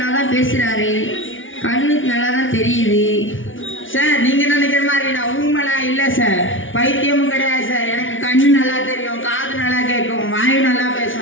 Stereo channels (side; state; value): right; late; 0.57 ms